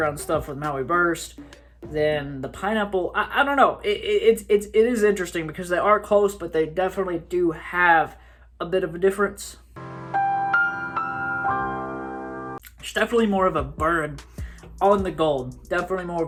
stuff with Maui Burst, then the pineapple, I don't know. It is interesting because they are close, but they definitely do have a bit of a difference. It's definitely more of a burn on the Gold. Definitely more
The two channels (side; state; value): both; identical; correlation 1.00